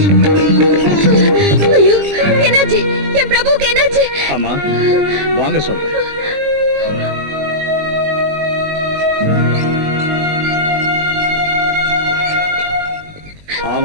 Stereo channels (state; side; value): late; left; 20 ms